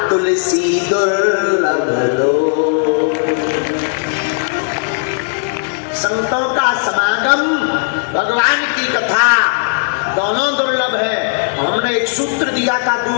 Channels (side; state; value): right; silent; 69 dB below the other